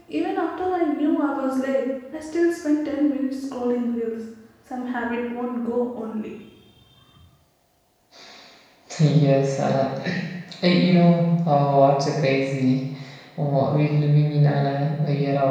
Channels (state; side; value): identical; both; correlation 1.00